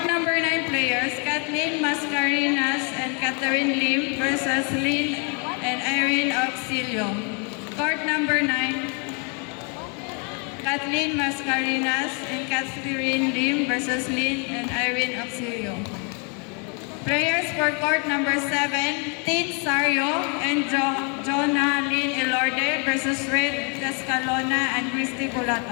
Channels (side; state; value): right; quieter; 36.7 dB